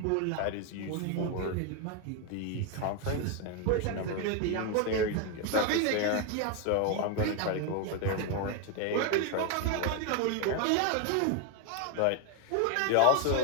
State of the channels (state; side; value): different; both; correlation 0.01